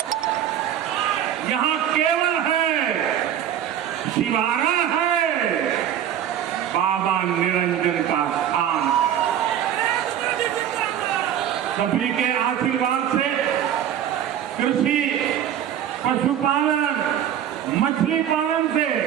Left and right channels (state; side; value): quieter; left; 10.1 dB